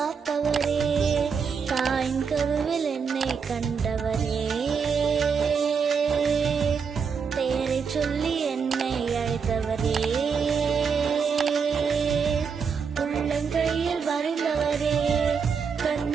தாயின் கருவில் என்னை கண்டவரே, பெயரை சொல்லி என்னை அழைத்தவரே, உள்ளங்கையில் வரைந்தவரே,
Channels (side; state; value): left; quieter; 6.1 dB